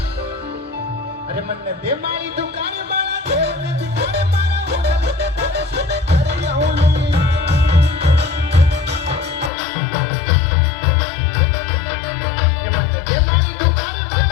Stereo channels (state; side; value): drops out; right; at 9.5 s